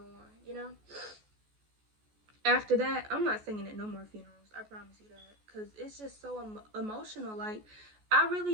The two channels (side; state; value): left; late; 14 ms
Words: on, After that, I'm not singing at no more funerals. I promise you that, because it's just so emotional. Like, I